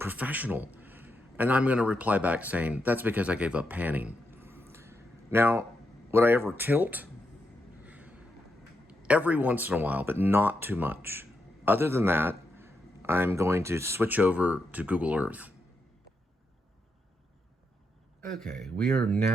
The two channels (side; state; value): both; normal; correlation 0.83